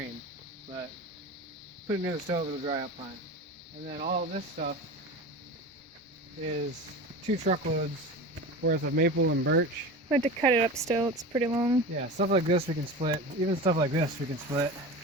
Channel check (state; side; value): normal; both; correlation 0.30